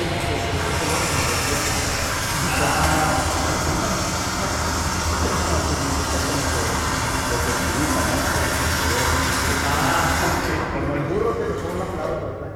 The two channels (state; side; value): identical; both; correlation 1.00